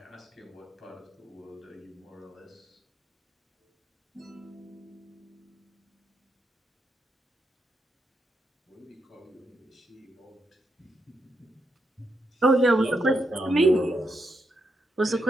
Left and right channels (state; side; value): normal; both; correlation 0.81